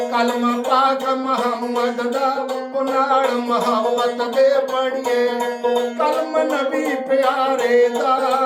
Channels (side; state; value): both; identical; correlation 1.00